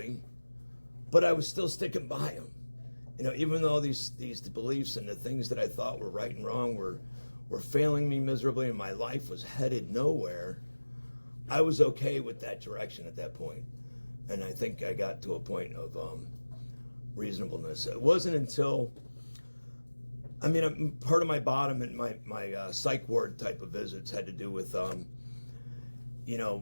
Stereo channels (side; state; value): both; inverted; correlation -1.00